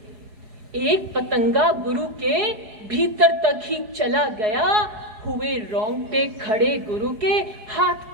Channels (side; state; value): left; late; 5.0 ms